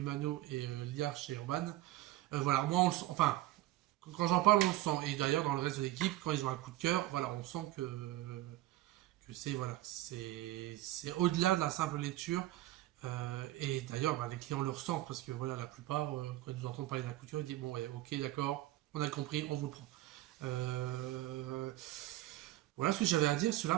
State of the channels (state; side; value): quieter; left; 16.0 dB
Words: et Liard chez Urban. Voilà, moi, enfin, quand j'en parle, on le sent. Et d'ailleurs, dans le reste de l'équipe, quand ils ont un coup de cœur, voilà, on sent que c'est voilà, c'est au-delà de la simple lecture. Et d'ailleurs, bah, les clients le ressentent parce que voilà, la plupart, quand ils nous entendent parler d'un coup de cœur, ils disent bon, ouais, ok, d'accord, on a compris, on vous le prend. Euh, voilà ce que j'avais à dire sur